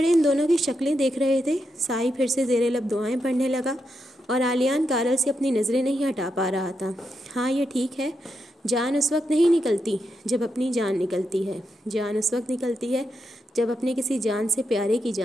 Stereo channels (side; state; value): both; normal; correlation 0.84